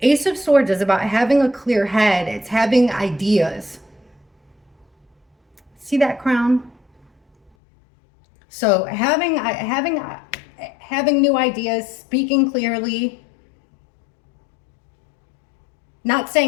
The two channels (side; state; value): right; drops out; at 7.5 s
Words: Ace of Swords is about having a clear head. It's having ideas. See that crown? So having new ideas, speaking clearly, not